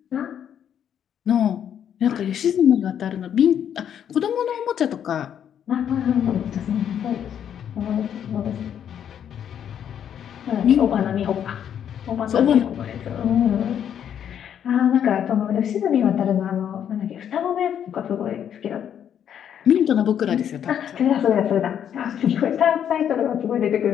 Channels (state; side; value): quieter; right; 9.1 dB